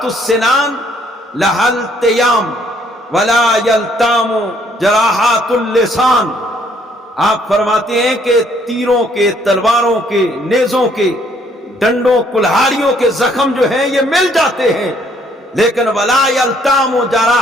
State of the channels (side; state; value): both; normal; correlation 0.65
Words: السنان لہل تیام ولا یلتام جراحات اللسان۔ آپ فرماتے ہیں کہ تیروں کے، تلواروں کے، نیزوں کے، ڈنڈوں کلہاڑیوں کے زخم جو ہیں یہ مل جاتے ہیں، لیکن ولا یلتام